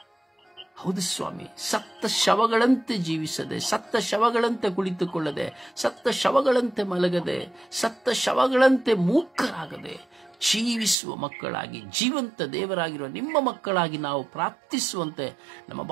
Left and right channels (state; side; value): drops out; left; at 11.0 s